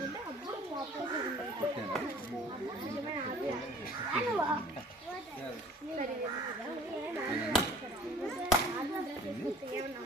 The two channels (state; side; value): normal; both; correlation 0.50